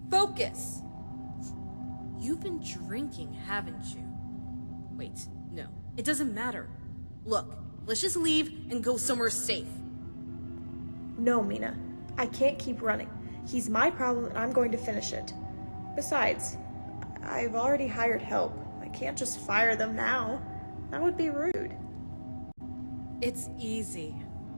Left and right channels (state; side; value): inverted; both; correlation -1.00